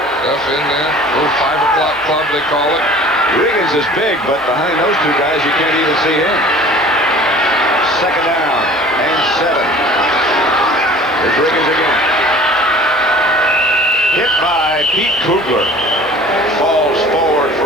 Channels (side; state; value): both; normal; correlation 0.46